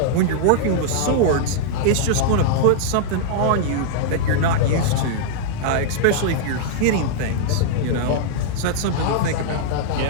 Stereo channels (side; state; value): both; different; correlation -0.01